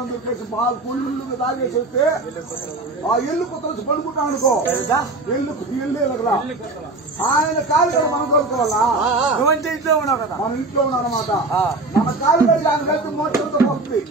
దొరికేసి పాలు పుల్లు తాగేసేస్తే ఆ ఎల్లు కొత్త పడుకుంటాం అనుకో ఎల్లు ఆయన కాలు కదా మనం కోరుకోవాలా. నువ్వంటే ఇంట్లో ఉన్నావు కదా, మన ఇంట్లో ఉన్నాం అనమాట. మన కాలు కలిసి ఆయన కలిసి మోసంతో వస్తుంది.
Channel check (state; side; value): quieter; left; 3.1 dB